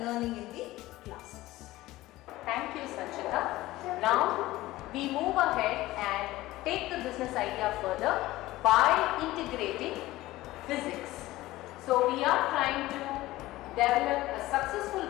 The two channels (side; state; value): right; quieter; 17.4 dB